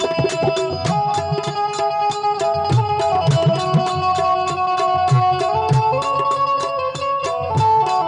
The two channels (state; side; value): identical; both; correlation 1.00